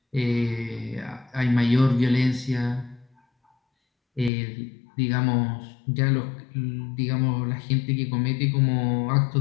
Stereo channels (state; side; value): drops out; right; at 4.3 s